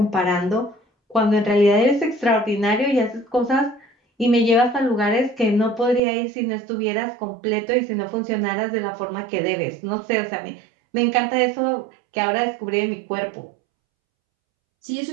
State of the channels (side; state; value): left; drops out; at 6.0 s